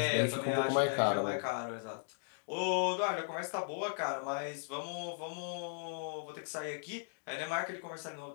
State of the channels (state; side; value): silent; right; digital silence